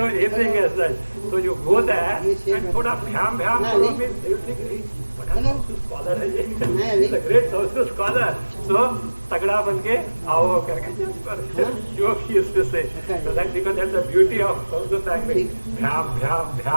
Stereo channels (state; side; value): inverted; both; correlation -1.00